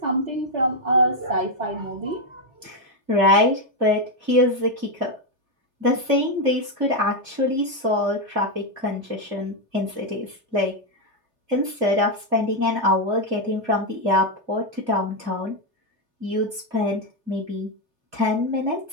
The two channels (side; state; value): left; late; 3.3 ms